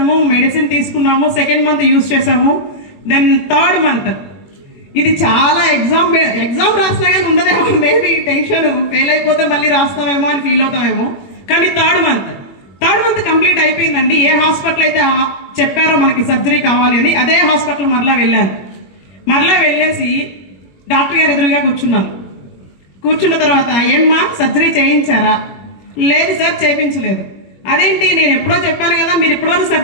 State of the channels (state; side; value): late; right; 21 ms